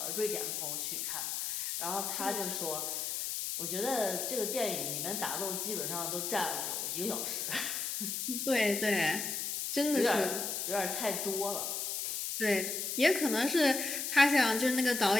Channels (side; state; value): left; noise; hiss, 2 dB below the sound